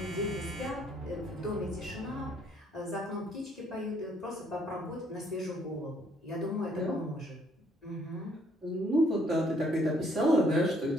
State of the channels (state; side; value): normal; both; correlation 0.66